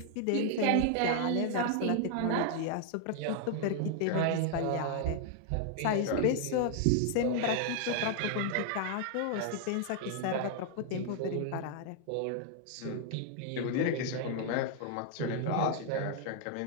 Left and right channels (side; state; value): both; different; correlation 0.00